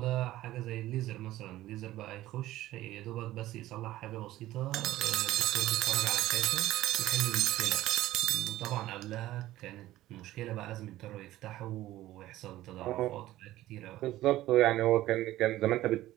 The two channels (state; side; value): quieter; left; 15.4 dB